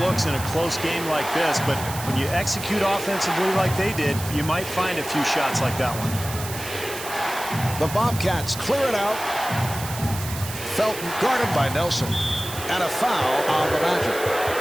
in a close game like this, but when you execute offensively like they did, you might find a few shots like that one. The Bobcats clear it out. Felton guarded by Nelson. And a foul on the Magic.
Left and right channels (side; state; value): right; noise; hiss, 10 dB below the sound